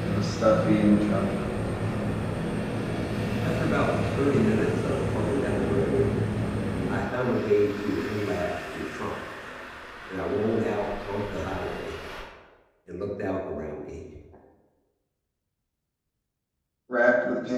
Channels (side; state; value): both; identical; correlation 1.00